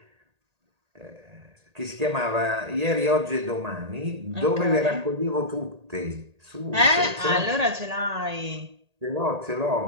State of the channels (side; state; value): left; late; 1.8 ms